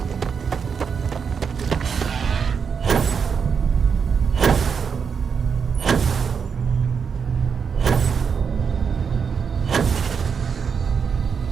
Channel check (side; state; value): left; quieter; 6.3 dB